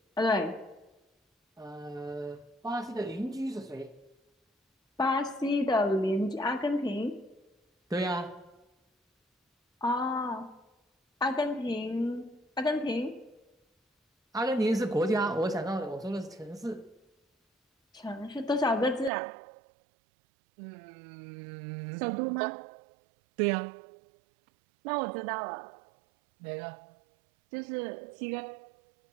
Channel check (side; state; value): left; drops out; at 19.1 s